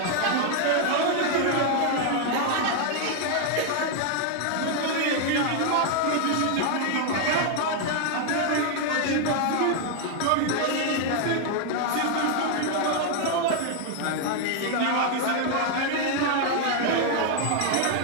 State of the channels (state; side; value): different; both; correlation 0.00